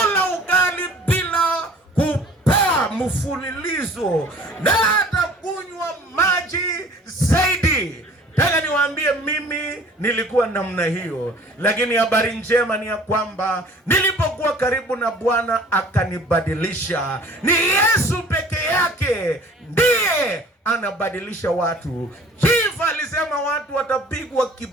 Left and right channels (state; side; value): normal; both; correlation 0.49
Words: ugali bila kupaa mfululizo, na hata kunywa maji zaidi. Nataka niwaambie mimi nilikuwa namna hiyo, lakini habari njema ni ya kwamba nilipokuwa karibu na Bwana akanibadilisha. Ni Yesu peke yake ndiye anabadilisha watu. Chief alisema watu watapigwa